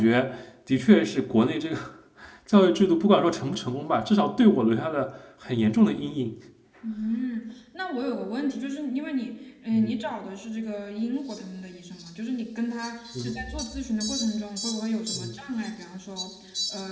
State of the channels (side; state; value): both; identical; correlation 1.00